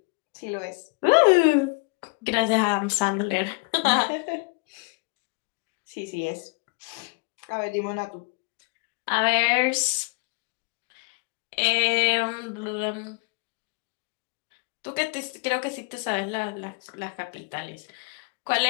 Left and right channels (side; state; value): right; quieter; 31.1 dB